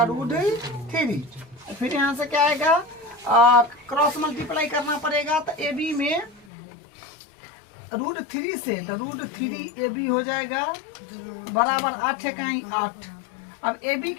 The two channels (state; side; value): drops out; right; at 6.5 s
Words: √3। फिर यहाँ से क्या आएगा, क्रॉस मल्टीप्लाई करना पड़ेगा, तो ए बी में √3 से, तो √3 ए बी हो जाएगा बराबर 8 है कहीं 8। अब ए बी